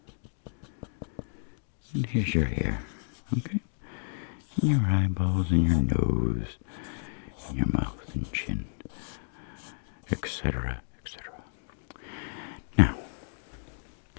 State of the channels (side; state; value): right; silent; digital silence